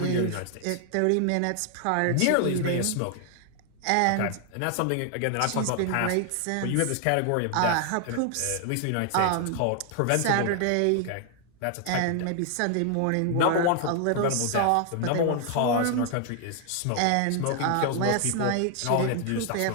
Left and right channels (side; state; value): both; different; correlation 0.00